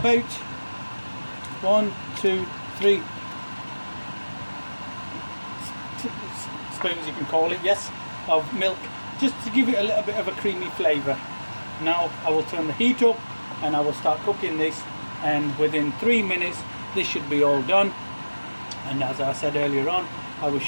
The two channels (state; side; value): inverted; both; correlation -1.00